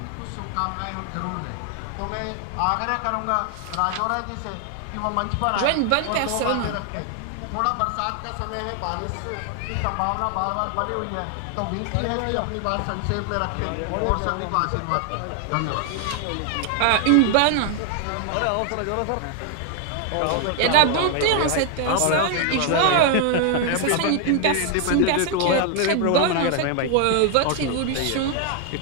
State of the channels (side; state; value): both; different; correlation 0.00